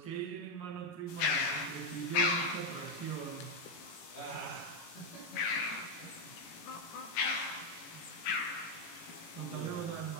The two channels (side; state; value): right; late; 18 ms